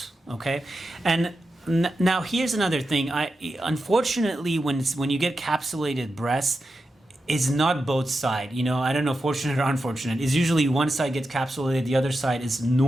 Okay, and now here's another thing. Unfortunately, when you get capsulated breasts, it's not both sides. I don't know, fortunate or unfortunate. It's usually one side gets capsulated, the other side is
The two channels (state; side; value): normal; both; correlation 0.89